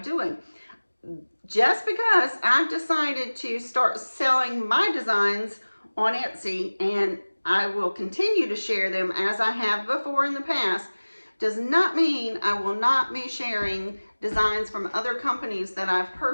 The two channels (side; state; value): both; inverted; correlation -1.00